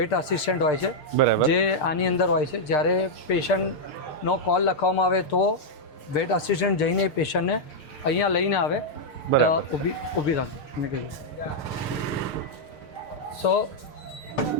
આસિસ્ટન્ટ હોય છે બરાબર. જે આની અંદર હોય છે. જ્યારે પેશન્ટનો કોલ લખવામાં આવે તો વેટ આસિસ્ટન્ટ જઈને એ પેશન્ટને અહીંયા લઈને આવે. બરાબર. ઊભી રાખો મેં કીધું. સો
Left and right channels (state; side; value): late; right; 6.6 ms